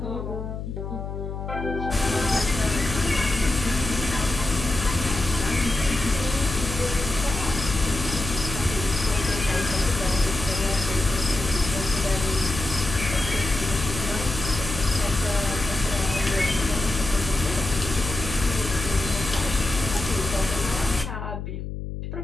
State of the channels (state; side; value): noise; left; hum, 7 dB below the sound